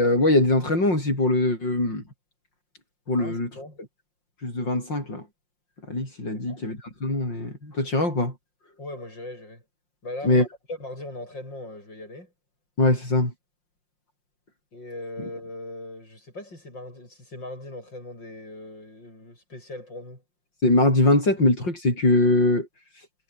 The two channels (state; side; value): late; right; 5.6 ms